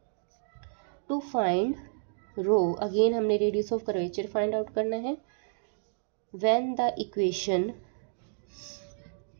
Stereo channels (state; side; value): silent; left; digital silence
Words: टू फाइंड रो, अगेन हमने radius of curvature find out करना है। When the equation